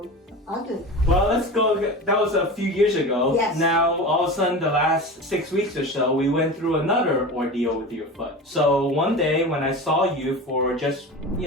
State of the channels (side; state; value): both; normal; correlation 0.30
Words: ugly. Well, let's go. That was a few years ago. Yes. Now, all of a sudden, the last 6 weeks or so, we went through another ordeal with your foot. So one day when I saw you for just,